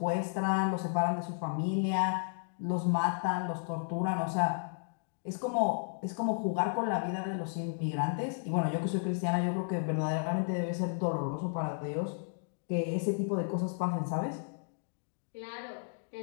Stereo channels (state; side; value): silent; right; digital silence